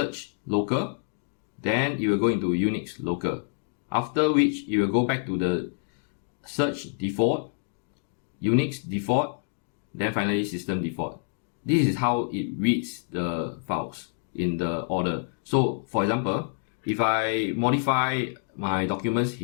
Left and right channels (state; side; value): silent; right; digital silence